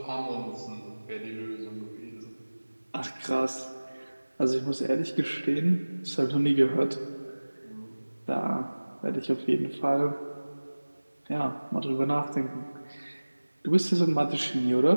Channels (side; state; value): both; inverted; correlation -1.00